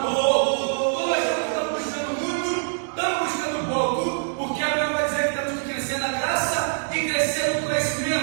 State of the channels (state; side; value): silent; left; digital silence